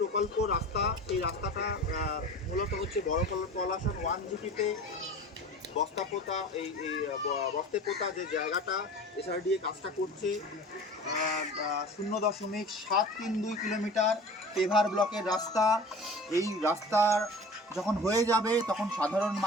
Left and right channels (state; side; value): normal; both; correlation 0.39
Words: প্রকল্প রাস্তা, সেই রাস্তাটা মূলত হচ্ছে বড় পলাশন 1 জিপিতে বস্তাপোতা বস্তেপোতা যে জায়গাটা এসআরডিএ কাজটা করছে 0.732 কিলোমিটার পেভার ব্লকের রাস্তা। এই রাস্তার যখন হয়ে যাবে তখন সাধারণ